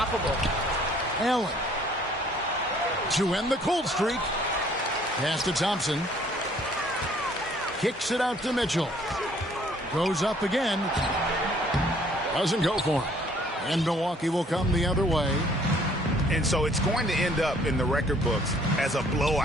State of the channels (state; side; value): normal; both; correlation 0.60